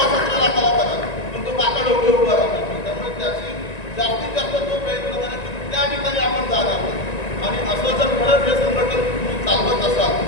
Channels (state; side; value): late; right; 1.9 ms